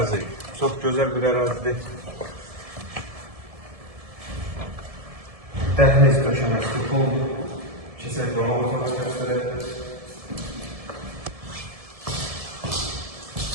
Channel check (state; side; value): late; left; 1.7 ms